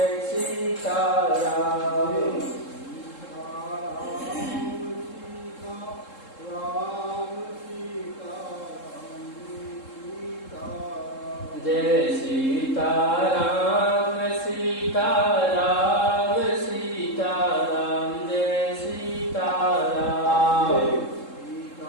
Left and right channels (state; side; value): late; right; 3.7 ms